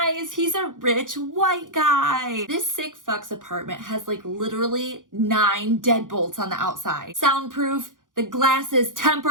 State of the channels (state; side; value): late; left; 0.88 ms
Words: He's a rich white guy. This sick fuck's apartment has like literally 9 deadbolts on the outside. Soundproof. The glass is